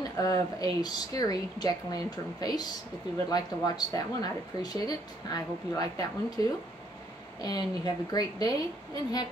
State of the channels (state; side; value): normal; both; correlation 0.68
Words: of a scary jack-o'-lantern face. If you would like to watch that one, I'd appreciate it. I hope you like that one too. And you have a great day and